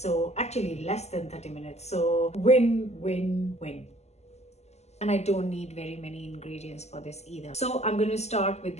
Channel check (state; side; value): late; right; 0.32 ms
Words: actually less than 30 minutes. So win, win, win. And I don't need very many ingredients for this either. So I'm going to start with